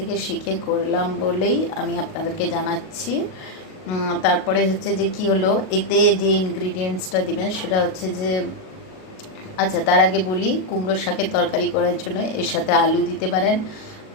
শিখে করলাম বলেই আমি আপনাদেরকে জানাচ্ছি। তারপরে হচ্ছে যে কি হলো, এতে যে ইনগ্রিডিয়েন্টসটা দিবেন সেটা হচ্ছে যে, আচ্ছা তার আগে বলি, কুমড়ো শাকের তরকারি করার জন্য এর সাথে আলু দিতে পারেন,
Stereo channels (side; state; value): right; late; 38 ms